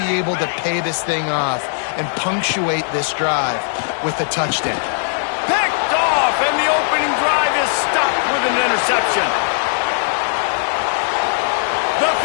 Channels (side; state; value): right; silent; 66 dB below the other